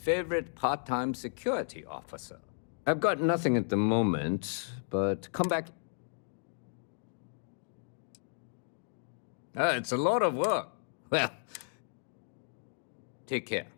part-time security officer. I've got nothing at the moment, but come back. It's a lot of work. Well, take care.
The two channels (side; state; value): right; silent; digital silence